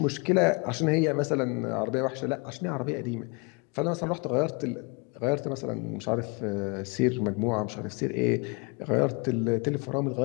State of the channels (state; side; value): quieter; right; 31.5 dB